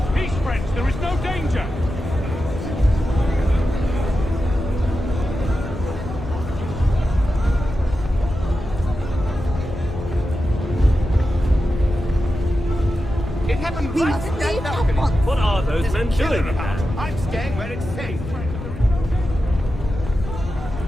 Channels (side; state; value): left; noise; rumble, 10 dB below the sound